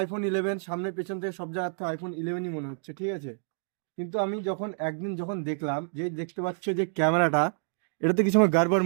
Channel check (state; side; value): silent; left; digital silence